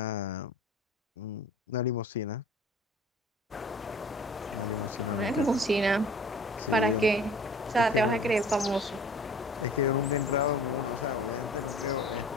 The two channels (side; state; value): both; normal; correlation 0.46